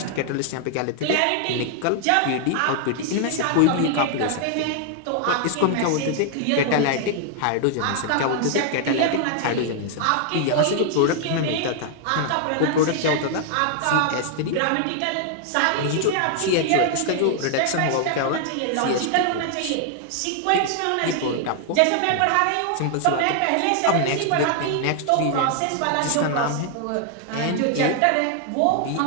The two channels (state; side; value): different; both; correlation 0.00